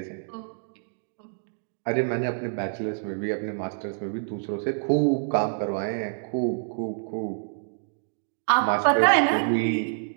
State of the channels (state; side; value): silent; left; digital silence